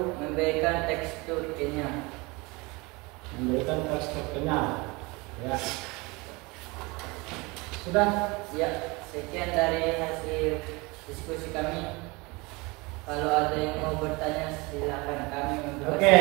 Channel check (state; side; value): quieter; left; 25.4 dB